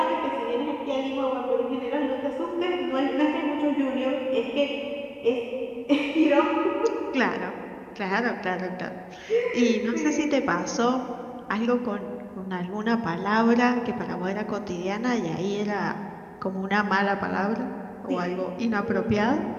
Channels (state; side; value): identical; both; correlation 1.00